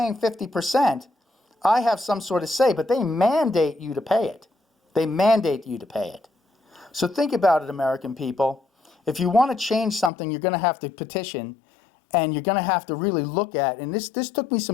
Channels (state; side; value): drops out; right; at 10.1 s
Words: 50%, I have some sort of say, but they mandate you to pay it. They mandate you to pay it. So think about it, American people. If you want to change something, you're going to have to petition, and you're going to have to really look at, and this took me